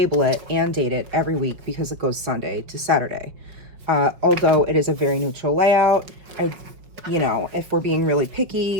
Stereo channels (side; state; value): left; late; 5.3 ms